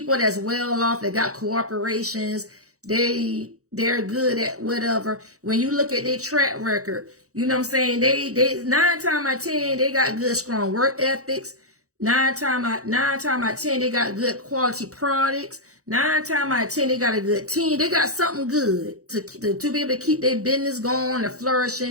that's well off, that got corporations, they're good at whatever. When you look at their track record, you know what I'm saying? They 9 times out of 10, they got good, strong work ethics. 9 times out of 10, they got good quality products. 9 times out of 10, they got a good team. They got something good to be able to keep their business going and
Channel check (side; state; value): left; late; 0.65 ms